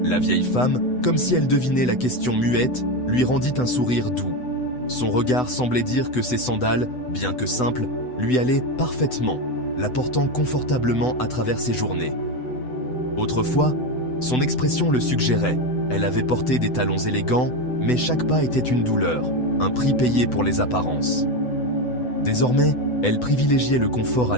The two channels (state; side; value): late; right; 8.0 ms